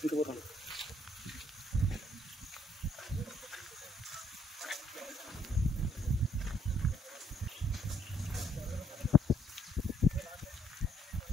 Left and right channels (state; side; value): normal; both; correlation 0.69